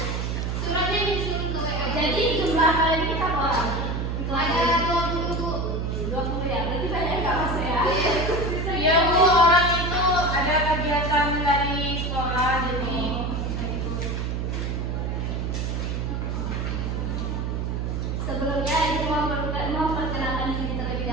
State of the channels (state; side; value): noise; right; hum, 1 dB below the sound